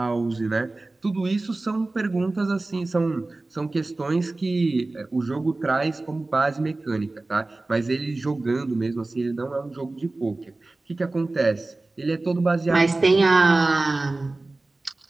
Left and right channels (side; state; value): left; quieter; 3.1 dB